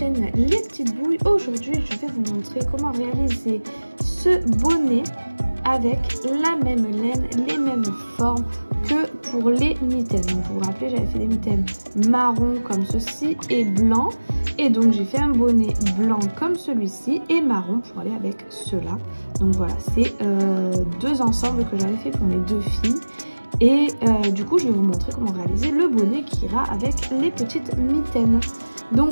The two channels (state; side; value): inverted; both; correlation -1.00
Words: Les Petites Bouilles. Aujourd'hui, je vais vous montrer comment réaliser ce bonnet avec la même laine, les mêmes formes que pour les mitaines. Donc, vous vous rappelez, j'avais fait des mitaines marron comme ceci et blanc. Et donc, j'ai fait un bonnet blanc comme celui-ci et marron pour aller avec cela. Donc voilà, c'est deux ensembles que j'avais fait pour mes deux filles. Et du coup, je vais vous montrer comment réaliser le bonnet qui ira avec les petites mitaines.